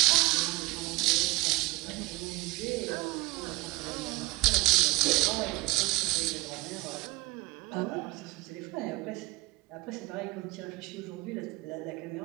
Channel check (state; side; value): quieter; left; 23.6 dB